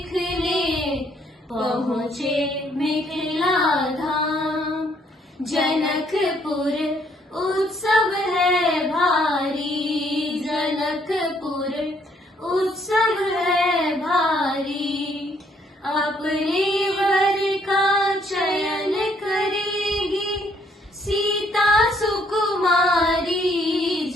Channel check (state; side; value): normal; both; correlation 0.67